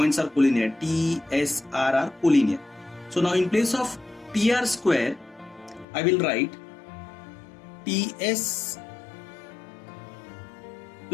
are collinear. T, S, R are collinear. So now in place of TR square, I will write TS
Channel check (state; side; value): drops out; right; at 5.9 s